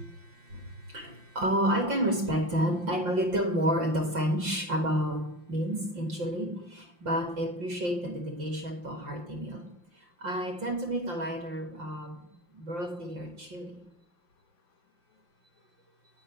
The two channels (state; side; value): late; left; 5.7 ms